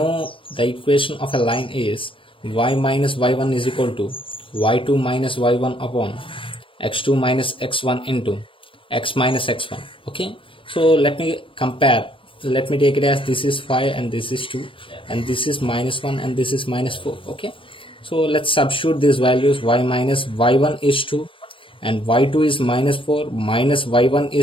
the equation of a line is y minus y1 is equal to y2 minus y1 upon x2 minus x1 into x minus x1. Okay, so let me compare. Let me take it as this is 5 and this is 2 and this is minus 1 and this is minus 4. Okay, so let's substitute these values. Y minus y1 is 2 and y2 is minus 4, minus y1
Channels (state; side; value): late; right; 0.25 ms